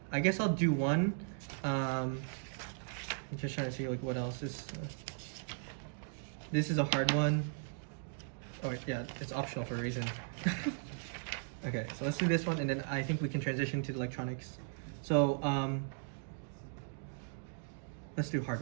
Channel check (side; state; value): left; silent; digital silence